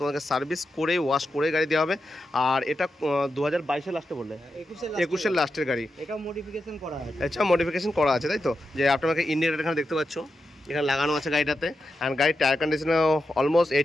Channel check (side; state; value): both; normal; correlation 0.88